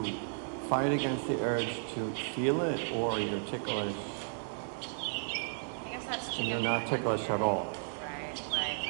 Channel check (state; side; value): silent; left; digital silence